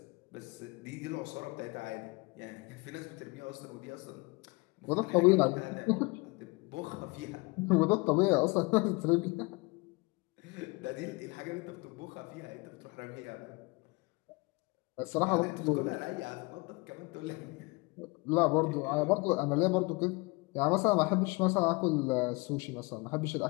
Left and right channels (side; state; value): right; quieter; 26.4 dB